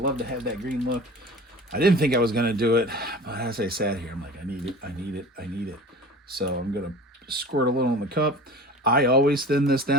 to have that green look. I didn't think I was going to do it, but as I sat here, I'm like, I need it. So I'm going to squirt a little in the cup. I always thin this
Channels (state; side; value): normal; both; correlation 0.38